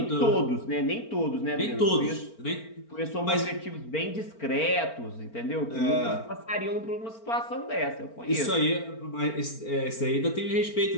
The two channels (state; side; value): late; right; 4.4 ms